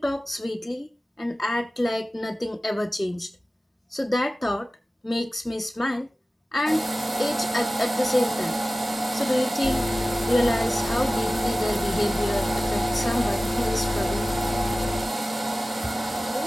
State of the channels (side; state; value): both; normal; correlation 0.96